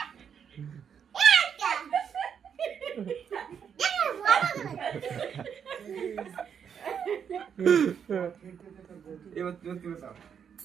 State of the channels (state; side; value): quieter; left; 7.6 dB